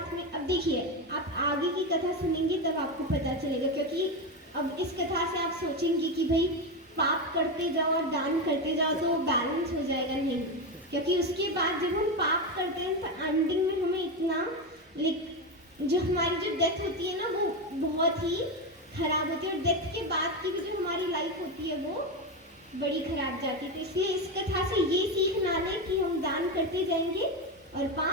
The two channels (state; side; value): normal; both; correlation 0.14